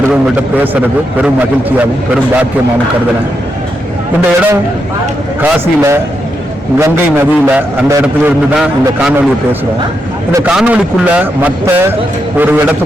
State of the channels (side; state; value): both; normal; correlation 0.83